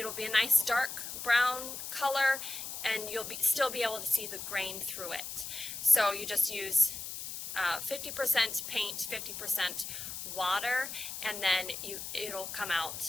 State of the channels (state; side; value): noise; left; hiss, 7 dB below the sound